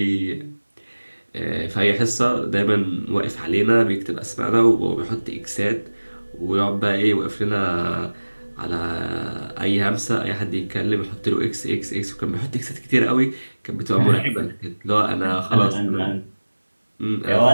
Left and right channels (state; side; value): inverted; both; correlation -1.00